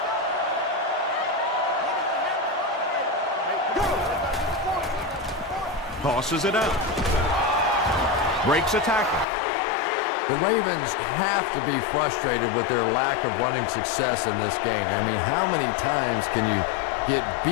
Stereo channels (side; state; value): right; drops out; at 9.2 s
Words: Tosses it out. Breaks a tackle. The Ravens have to be frustrated with their lack of running success in this game. I mean, how many times can you get